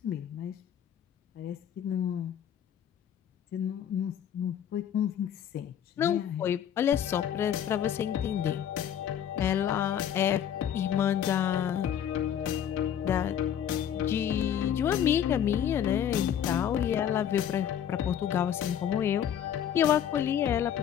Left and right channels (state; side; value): quieter; right; 9.5 dB